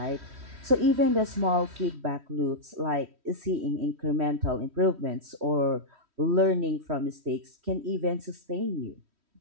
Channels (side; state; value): left; late; 3.1 ms